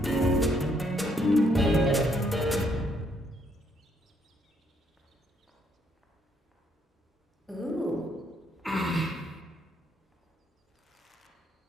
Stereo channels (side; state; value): both; normal; correlation 0.71